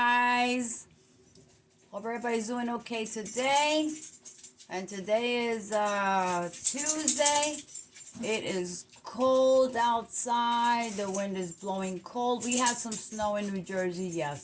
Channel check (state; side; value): identical; both; correlation 1.00